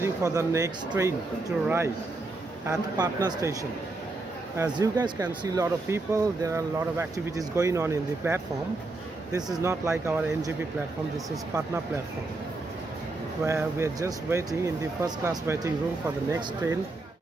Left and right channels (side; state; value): left; quieter; 3.2 dB